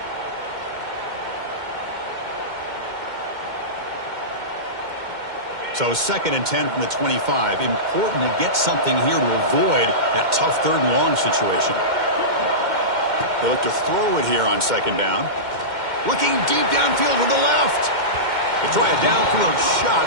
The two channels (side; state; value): left; late; 2.1 ms